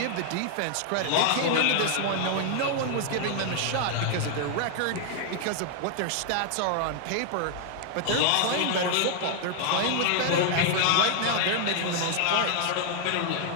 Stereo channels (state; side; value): different; both; correlation 0.00